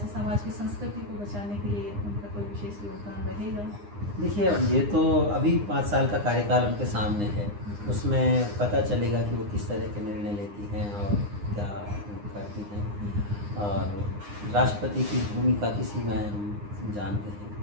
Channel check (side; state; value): left; late; 9.8 ms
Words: समाज की संस्कृति को बचाने के लिए उनका कोई विशेष योगदान रहेगा? देखिए, ये तो अभी 5 साल का कार्यकाल उनके सामने है, उसमें पता चलेगा कि वो किस तरह के निर्णय लेती हैं और क्या करती हैं। और राष्ट्रपति की भूमिका किसी में हम जानते हैं,